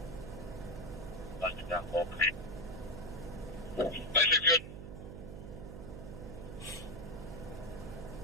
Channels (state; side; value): noise; right; hum, 9 dB below the sound